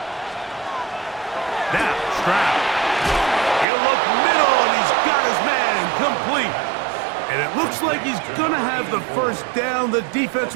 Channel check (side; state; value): left; drops out; at 3.7 s